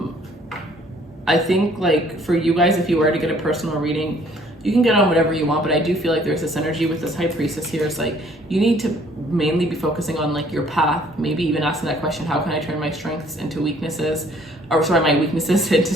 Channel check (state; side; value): normal; both; correlation 0.60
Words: think like for you guys, if you were to get a personal reading, you can get on whatever you want, but I do feel like there's this energy with this High Priestess here. It's like you need to mainly be focusing on like your path, maybe even asking that question, how can I turn my strengths into weaknesses? Or sorry, my weaknesses into